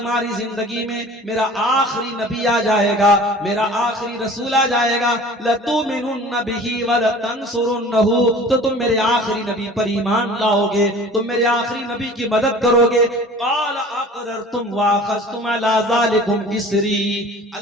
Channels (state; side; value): normal; both; correlation 0.44